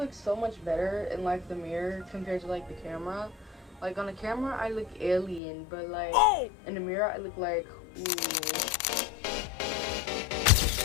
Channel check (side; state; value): right; drops out; at 5.4 s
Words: so much better in like the mirror compared to like the camera? Like on the camera I look alien, but like in the mirror I look like, ooh.